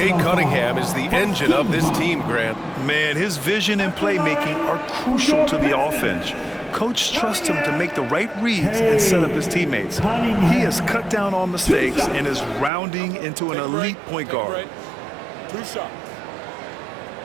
Cunningham is the engine of this team, Grant. Man, his vision and playmaking are crucial to the offense. Coach trusts him to make the right reads and set up his teammates. He has cut down on mistakes and is rounding into an elite point guard. 2 shots.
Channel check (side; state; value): left; drops out; at 12.7 s